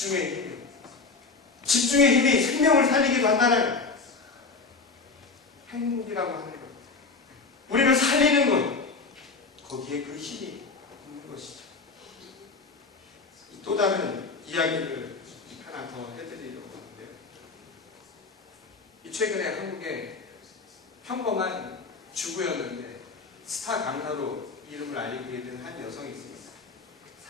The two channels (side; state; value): right; quieter; 4.2 dB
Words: 힘이요. 집중의 힘이 생명을 살리기도 한다는 행복이라고 하는 것. 우리를 살리는 것. 거기에 그 힘이 있는 것이죠. 또 다른 이야기를 하나 더 해드리려고 하는데요. 최근에 한국에 평범한 주부였는데 스타 강사로 이름을 알리게 된 한 여성이 있습니다.